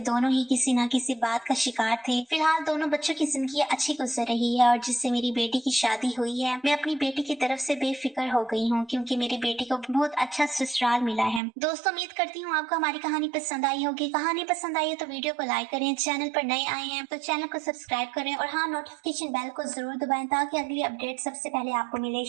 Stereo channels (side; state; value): left; drops out; at 11.4 s